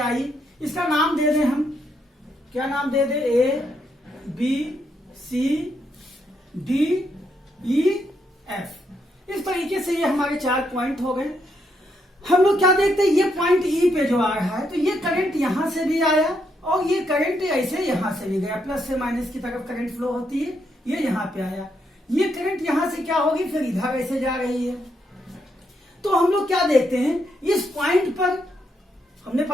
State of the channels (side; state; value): both; normal; correlation 0.78